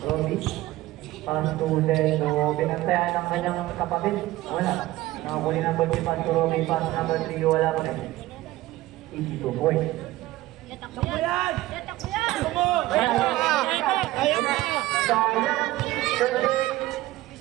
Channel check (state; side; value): quieter; left; 17.0 dB